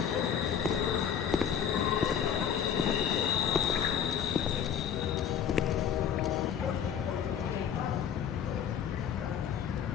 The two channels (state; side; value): quieter; right; 8.4 dB